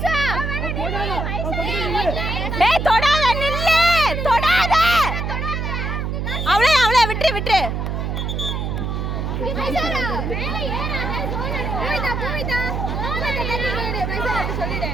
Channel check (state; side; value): noise; right; hum, 2 dB below the sound